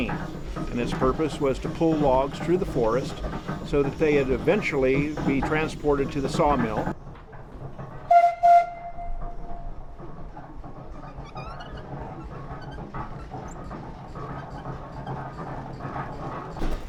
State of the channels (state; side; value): identical; both; correlation 1.00